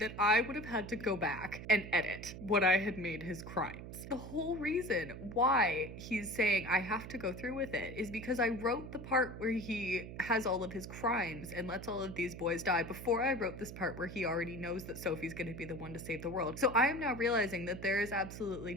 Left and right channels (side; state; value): right; noise; hum, 11 dB below the sound